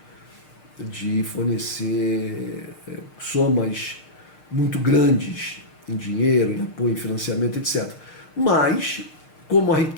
de fornecer somas muito grandes em dinheiro, em apoio, em financiamento, etc. Mas, como a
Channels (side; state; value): right; late; 6.6 ms